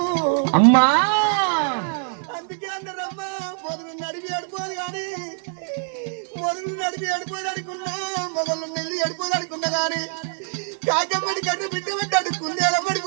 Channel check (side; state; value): left; silent; 58 dB below the other